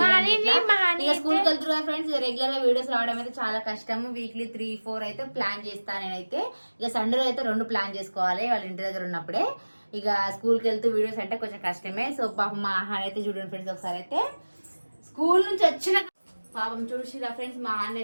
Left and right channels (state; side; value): inverted; both; correlation -1.00